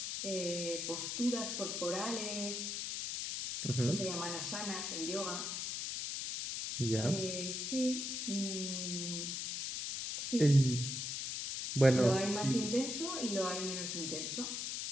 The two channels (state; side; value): noise; left; hiss, 3 dB below the sound